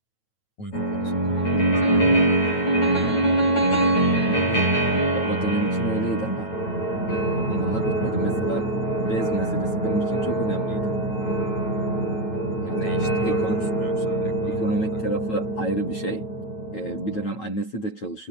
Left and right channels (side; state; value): right; late; 9.2 ms